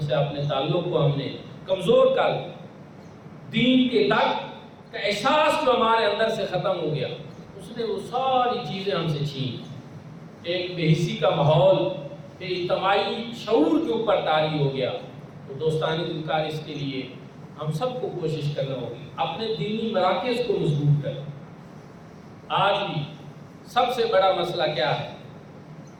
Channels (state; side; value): identical; both; correlation 1.00